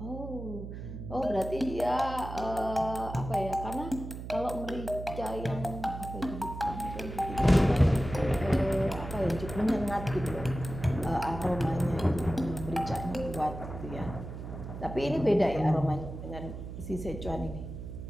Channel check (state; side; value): noise; right; hum, 9 dB below the sound